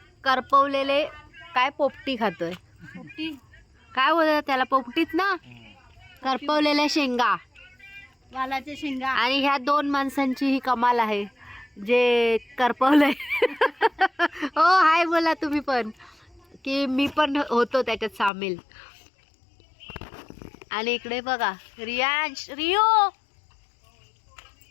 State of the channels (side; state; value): right; drops out; at 18.3 s